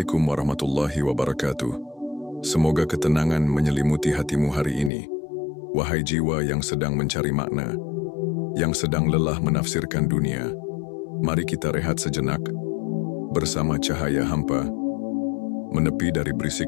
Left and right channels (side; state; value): right; drops out; at 4.9 s